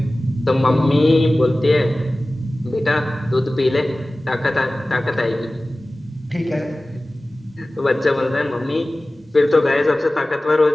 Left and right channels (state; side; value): normal; both; correlation 0.97